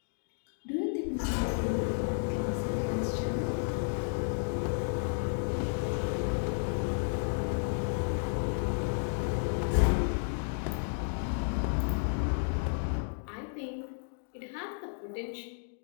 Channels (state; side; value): silent; right; digital silence